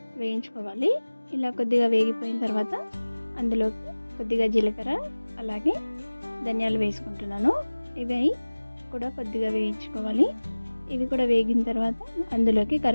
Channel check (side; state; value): both; inverted; correlation -1.00